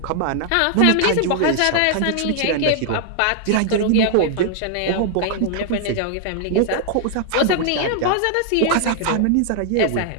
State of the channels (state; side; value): different; both; correlation 0.00